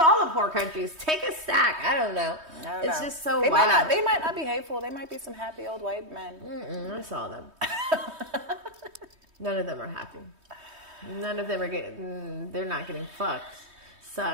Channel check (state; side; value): late; left; 3.2 ms